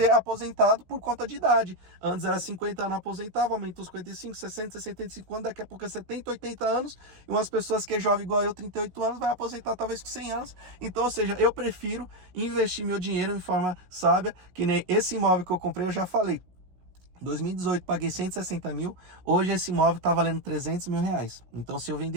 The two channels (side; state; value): left; late; 16 ms